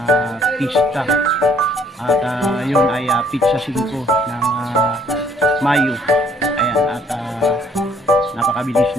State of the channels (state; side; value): normal; both; correlation 0.63